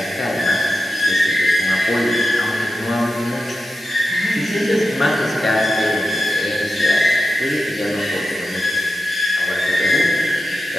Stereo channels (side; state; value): both; normal; correlation 0.91